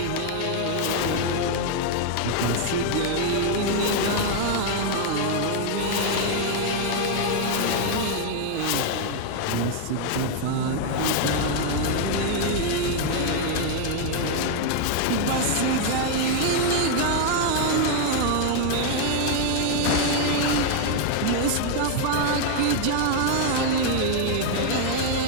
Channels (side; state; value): both; different; correlation 0.00